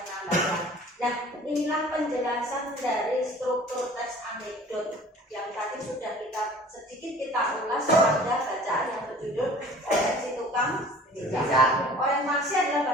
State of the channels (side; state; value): both; normal; correlation 0.47